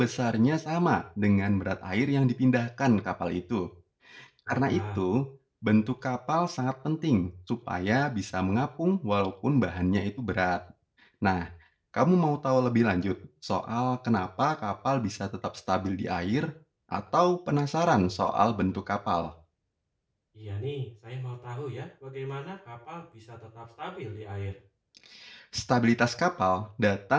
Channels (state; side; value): identical; both; correlation 1.00